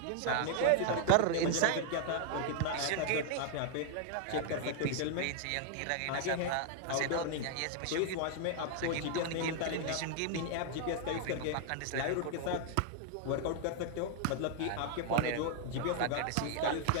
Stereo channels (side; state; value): both; different; correlation 0.00